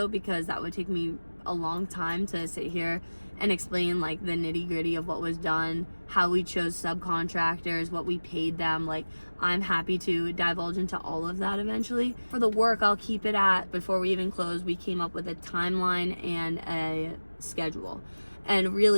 because that would take me a long time to sit here and explain like the nitty gritty of what was done, how we chose subcontractors, what we paid them. Like, I'm happy to divulge into all of that eventually. For the work, I'll keep it at, before we even close, we came up with a timeline and a schedule. And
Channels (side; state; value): both; inverted; correlation -1.00